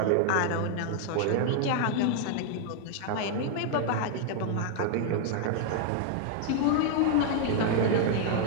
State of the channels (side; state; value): both; different; correlation 0.00